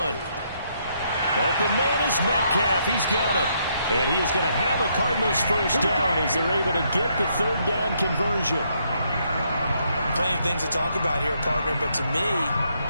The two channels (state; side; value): inverted; both; correlation -0.74